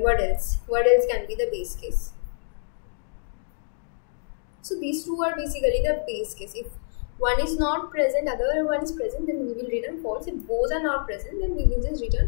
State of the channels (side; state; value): right; silent; digital silence